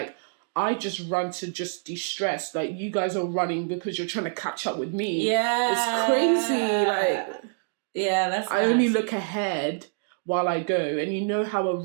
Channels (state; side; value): silent; left; digital silence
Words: I just run to just de-stress. Like, you guys are running because you're trying to catch up with me. Yeah. It's crazy. Like, yeah, that's I only look ahead while I go. And you know how a